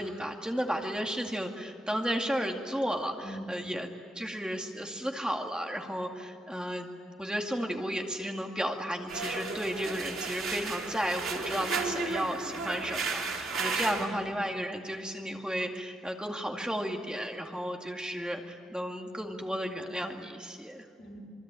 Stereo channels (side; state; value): both; normal; correlation 0.81